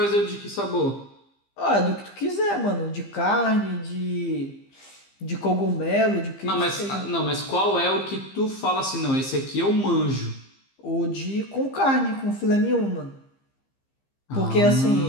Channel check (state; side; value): late; right; 15 ms